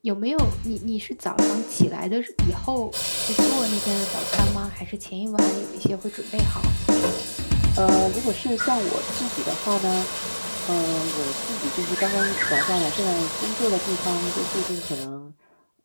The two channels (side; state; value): both; inverted; correlation -1.00